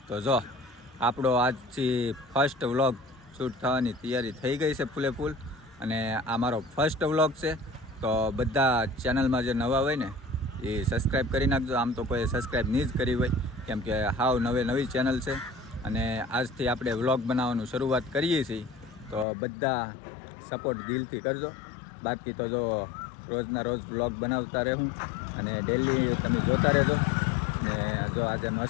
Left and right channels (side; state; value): right; drops out; at 19.2 s